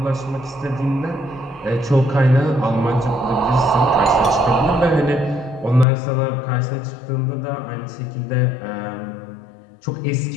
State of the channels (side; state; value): right; drops out; at 5.9 s